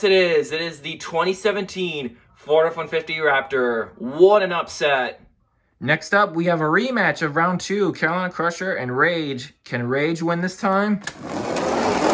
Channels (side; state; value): both; identical; correlation 1.00